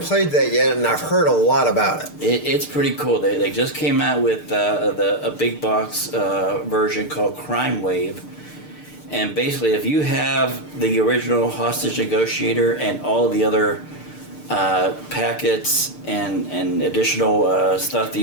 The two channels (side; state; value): right; late; 6.7 ms